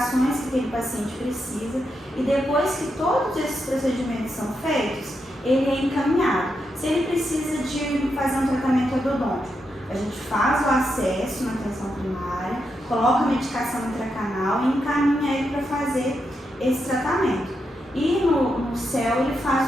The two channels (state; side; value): normal; both; correlation 0.84